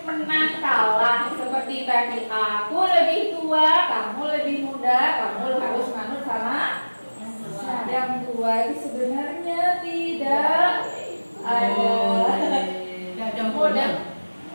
menang kalah seperti tadi, aku lebih tua, kamu lebih muda, kamu harus manut sama yang tua. Itu sebenarnya tidak ada model,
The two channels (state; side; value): inverted; both; correlation -1.00